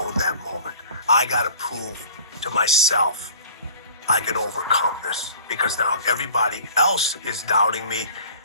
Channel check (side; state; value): both; inverted; correlation -0.47